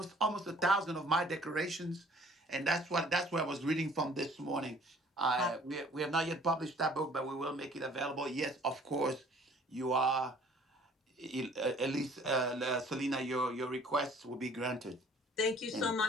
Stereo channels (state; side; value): normal; both; correlation 0.55